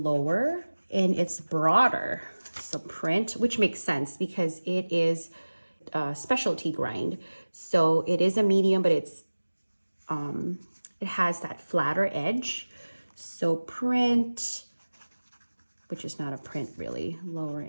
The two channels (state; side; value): inverted; both; correlation -1.00